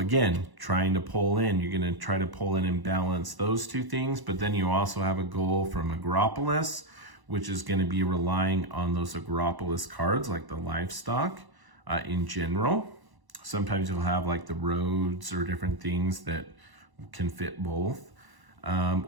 trying to pull in, you're going to try to pull in and balance those 2 things, but then you also have a goal from Agropolis, which is going to be relying on those Agropolis cards like the livestock in general. Sometimes you'll have like the roads or different things that can fit both.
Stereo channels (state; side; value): late; left; 1.0 ms